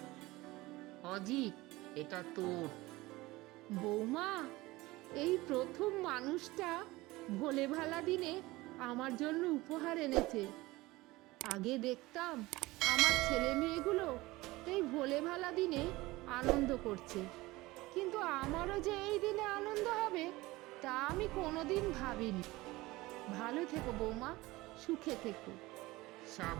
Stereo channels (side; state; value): left; quieter; 20.0 dB